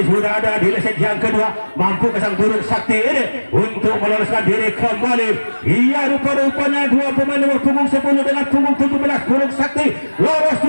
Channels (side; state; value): both; inverted; correlation -1.00